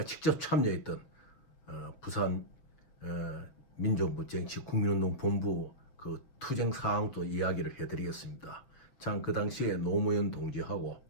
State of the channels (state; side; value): late; right; 6.9 ms